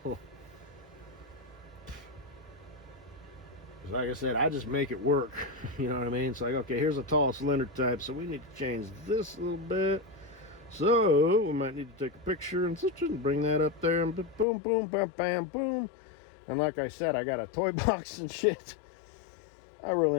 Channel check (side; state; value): right; drops out; at 14.5 s